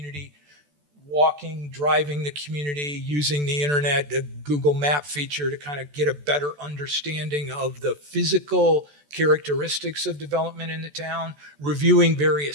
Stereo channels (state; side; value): late; left; 14 ms